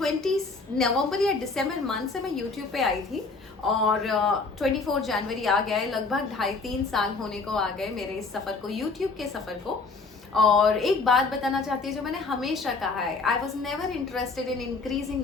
नवंबर या दिसंबर मंथ से मैं यूट्यूब पे आई थी, और 24 जनवरी आ गया है। लगभग 2.5-3 साल होने को आ गए मेरे इस सफ़र को, यूट्यूब के सफ़र को। और एक बात बताना चाहती हूँ जो मैंने हमेशा कहा है, I was never interested in increasing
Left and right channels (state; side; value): quieter; right; 4.1 dB